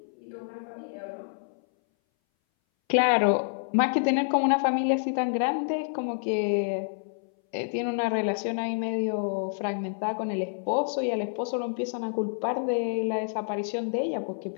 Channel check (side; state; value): right; silent; 59 dB below the other